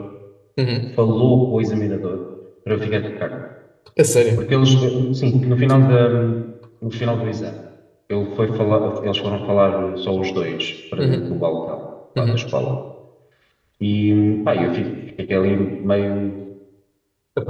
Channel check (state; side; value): identical; both; correlation 1.00